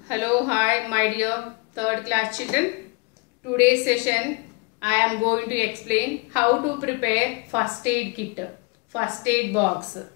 Hello, hi, my dear third class children. Today's session, I am going to explain how to prepare first aid kit, first aid box.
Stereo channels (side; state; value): right; quieter; 30.7 dB